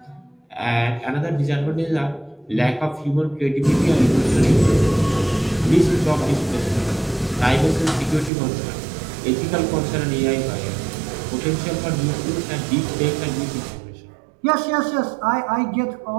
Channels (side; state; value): left; drops out; at 8.3 s